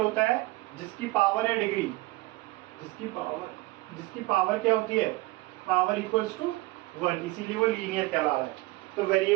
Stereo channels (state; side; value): quieter; left; 20.8 dB